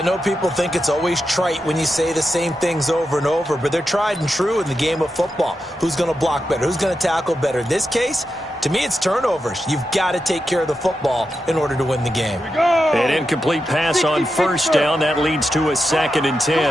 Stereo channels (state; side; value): normal; both; correlation 0.88